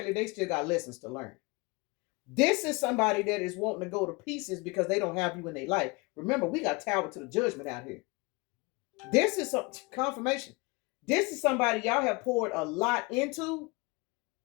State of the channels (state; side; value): quieter; right; 26.5 dB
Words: they still got lessons to learn. This is somebody that is wanting to go to pieces because they don't have you in their life. Remember, we got tower to the judgment out here. This is some confirmation. This is somebody y'all have poured a lot into,